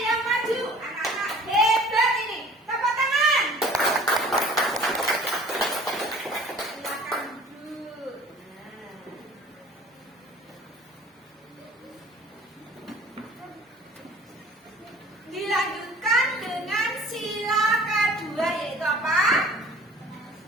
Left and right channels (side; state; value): both; normal; correlation 0.49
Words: yang maju. Anak-anak hebat ini. Tepuk tangan.